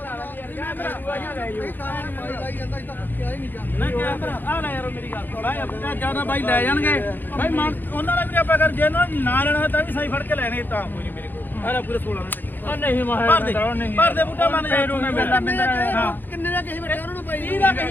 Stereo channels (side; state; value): right; late; 0.090 ms